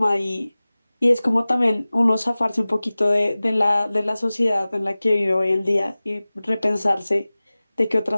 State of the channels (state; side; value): inverted; both; correlation -0.98